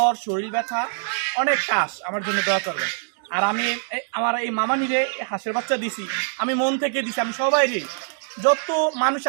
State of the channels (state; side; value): silent; left; digital silence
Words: শরীর ব্যথা, অনেক কাশ, আমার জন্য দোয়া করবেন। আর আমি আমার এই মামানিরে হাঁসের বাচ্চা দিছি, আমি মন থেকে দিছি। আমি সবাই যত মানুষ